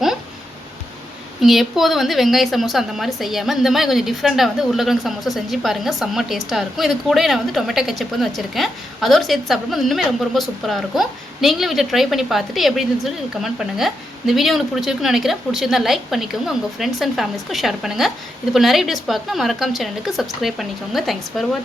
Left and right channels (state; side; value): normal; both; correlation 0.84